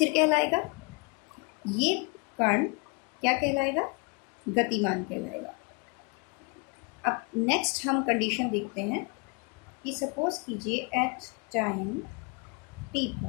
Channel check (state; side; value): quieter; right; 32.9 dB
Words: कहलाएगा? ये कण क्या कहलाएगा? गतिमान कहलाएगा। अब नेक्स्ट हम कंडीशन देखते हैं कि सपोज कीजिए एट टाइम t